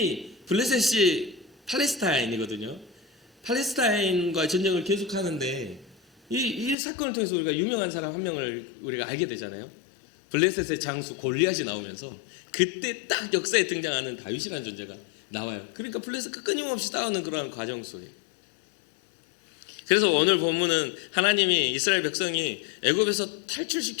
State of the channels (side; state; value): right; drops out; at 6.8 s